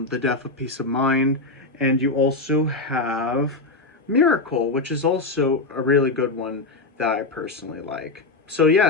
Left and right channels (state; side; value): quieter; right; 3.4 dB